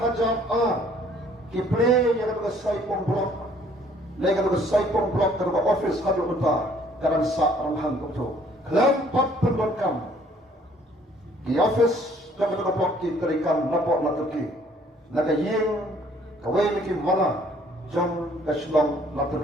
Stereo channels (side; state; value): both; normal; correlation 0.60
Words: ki play yang kada saipon blok le kada saipon blok kada office hadu mata kada sa ramhan to lam pat pendokam di office dan kada blok ki terikan napok na turki naga yeng kawai lagi mana jam kaslong na